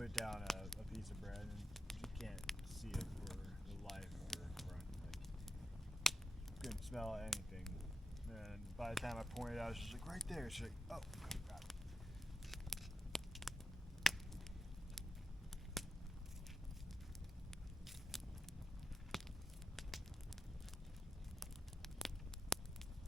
down a piece of bread and you can't see it for the life of your front. Like, couldn't smell anything. And by the time I pointed out, she's like, right there. She's like, oh, God.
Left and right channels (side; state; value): both; normal; correlation 0.86